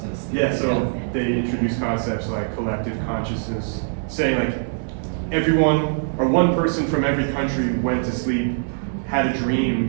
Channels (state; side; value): silent; left; digital silence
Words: Yeah, so they introduced concepts like collective consciousness, saying like everyone or one person from every country went to sleep, had a